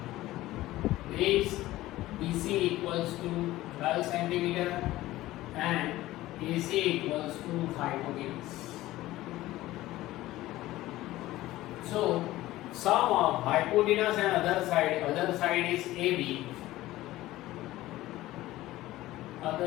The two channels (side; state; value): right; quieter; 16.5 dB